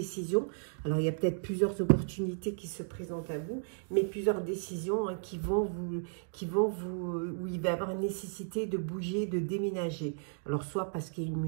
Alors, il y a peut-être plusieurs opportunités qui se présentent à vous, mais plusieurs décisions hein, où il va y avoir une nécessité de bouger, de déménager. Alors, soit parce qu'il y a une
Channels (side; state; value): left; silent; digital silence